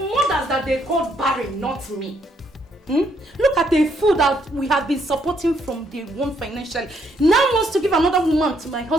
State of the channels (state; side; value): normal; both; correlation 0.71